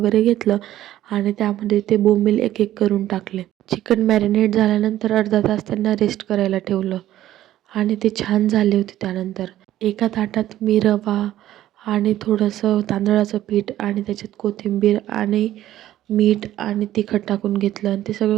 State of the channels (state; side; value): quieter; left; 13.4 dB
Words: घेतलं आणि त्यामध्ये ते बोंबील एक एक करून टाकले. चिकन मॅरिनेट झाल्यानंतर अर्धा तास त्यांना रेस्ट करायला ठेवलं आणि ते छान झाले होते. त्यानंतर एका ताटात मी रवा आणि थोडंसं तांदळाचं पीठ आणि त्याच्यात कोथिंबीर आणि मीठ आणि तिखट टाकून घेतलं आणि ते सगळं